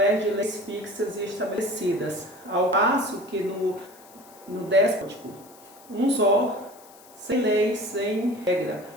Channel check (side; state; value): left; noise; hiss, 24 dB below the sound